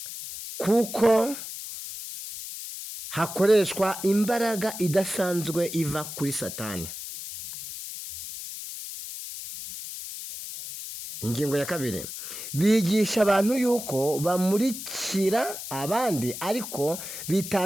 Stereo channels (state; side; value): noise; left; hiss, 9 dB below the sound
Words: kuko hakoreshwa imbaraga idasanzwe iva kuri Satani. Ingingo ya kabiri, bigisha abantu yuko bamurikira abandi ariko